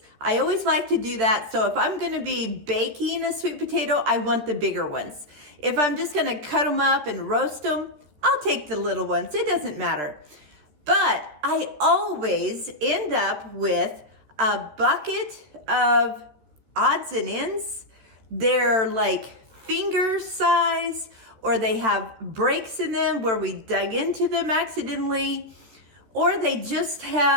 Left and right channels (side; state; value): left; late; 14 ms